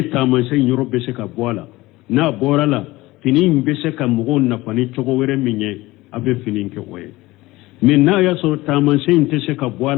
taamansen yɔrɔ bɛ se ka bɔ a la n'a bɔra la fini in bɛ se ka mɔgɔw nafa ni cogo wɛrɛ min ye a bɛ fini kɛ o ye mais n'a y'a sɔrɔ taamansen in tɛ se ka bɔ a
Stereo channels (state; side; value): quieter; right; 19.4 dB